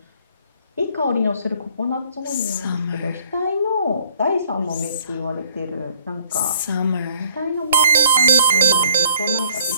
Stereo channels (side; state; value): both; inverted; correlation -0.58